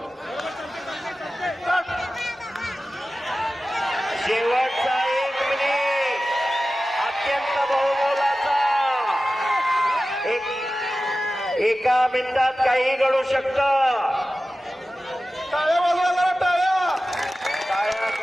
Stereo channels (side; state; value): both; normal; correlation 0.95